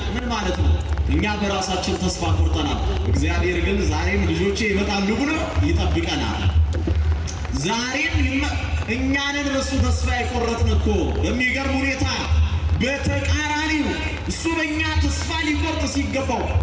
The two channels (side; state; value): both; identical; correlation 1.00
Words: ምን ማለት ነው? እኛ በራሳችን ተስፋ ቆርጠናል። እግዚአብሔር ግን ዛሬም ልጆቼ ይመጣሉ ብሎ ይጠብቀናል። ዛሬም እኛንን በሱ ተስፋ የቆረጥን እኮ በሚገርም ሁኔታ በተቃራኒው እሱ በእኛ ተስፋ ሊቆርጥ ሲገባው